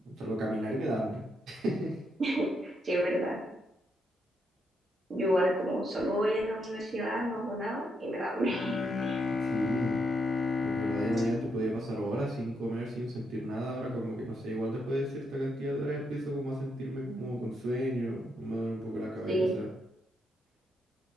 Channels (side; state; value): both; normal; correlation 0.79